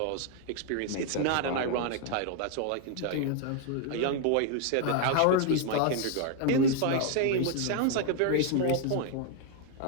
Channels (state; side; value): different; both; correlation 0.00